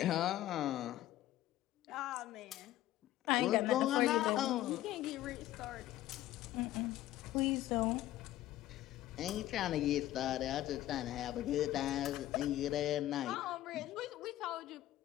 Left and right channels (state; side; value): quieter; right; 14.4 dB